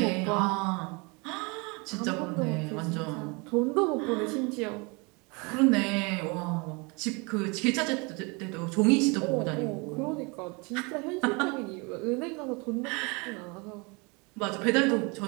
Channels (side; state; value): left; quieter; 29.2 dB